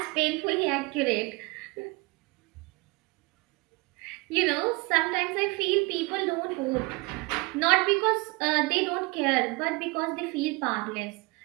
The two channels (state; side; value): quieter; left; 25.8 dB